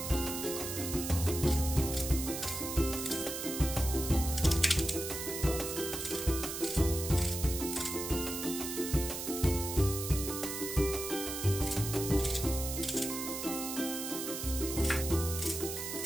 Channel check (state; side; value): noise; right; hiss, 5 dB below the sound